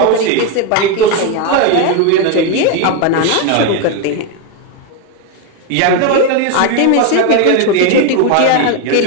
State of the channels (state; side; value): different; both; correlation 0.02